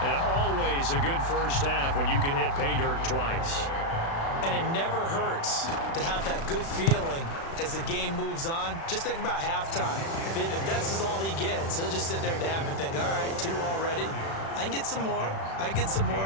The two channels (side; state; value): right; late; 36 ms